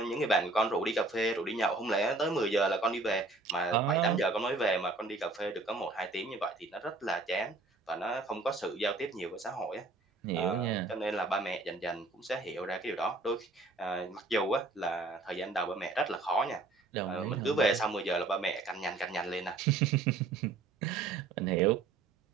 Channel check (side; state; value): left; quieter; 3.4 dB